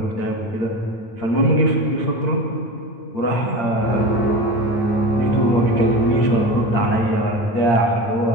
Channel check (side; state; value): right; late; 8.7 ms